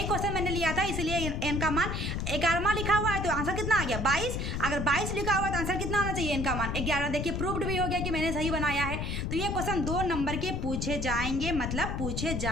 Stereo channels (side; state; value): left; noise; rumble, 2 dB below the sound